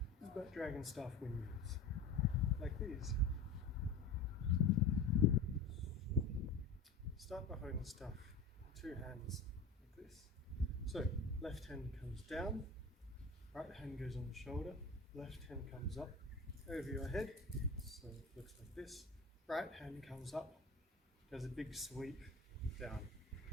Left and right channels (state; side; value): quieter; right; 3.7 dB